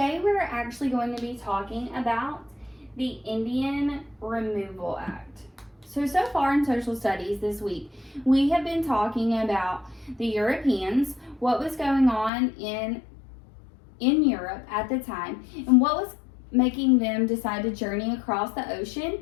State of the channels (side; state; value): right; drops out; at 12.3 s